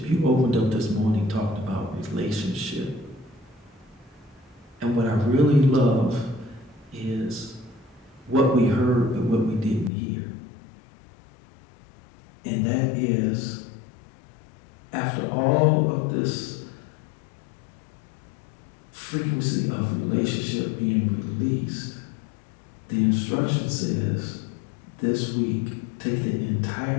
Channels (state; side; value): drops out; right; at 9.9 s